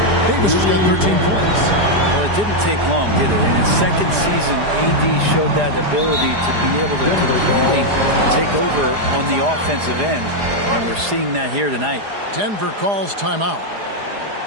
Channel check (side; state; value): left; late; 4.9 ms